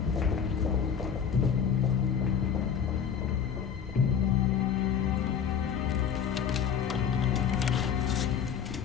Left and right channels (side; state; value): right; quieter; 7.6 dB